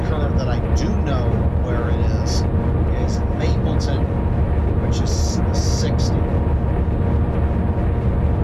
that I do know where it is Mapleton, which is the 60.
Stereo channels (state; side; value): identical; both; correlation 1.00